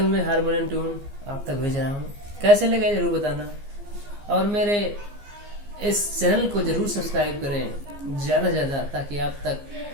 में हारमोनियम ट्यून आप तक भेज रहा हूँ। कैसे लगे जरूर बताना, और मेरे इस चैनल को जरूर सब्सक्राइब करें ज़्यादा से ज़्यादा, ताकि आप तक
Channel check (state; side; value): late; left; 15 ms